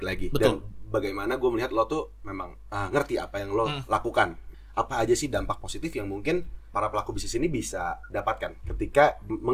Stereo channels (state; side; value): identical; both; correlation 1.00